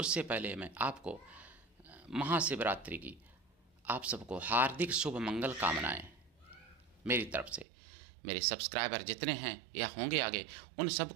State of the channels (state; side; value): drops out; left; at 7.7 s